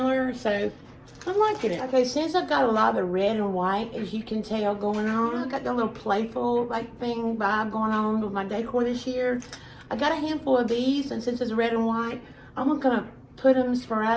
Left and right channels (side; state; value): both; identical; correlation 1.00